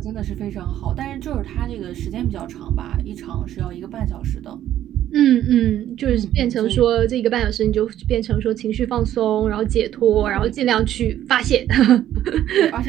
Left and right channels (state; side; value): quieter; left; 12.0 dB